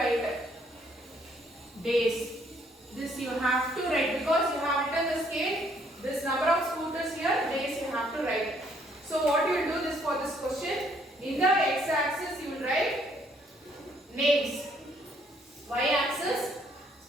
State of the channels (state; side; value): normal; both; correlation 0.67